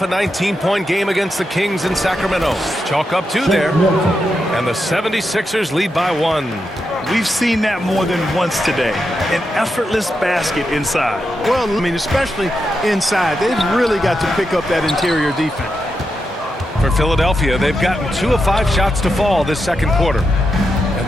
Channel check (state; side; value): normal; both; correlation 0.86